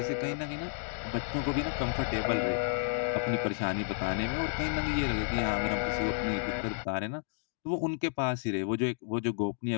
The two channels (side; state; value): right; silent; digital silence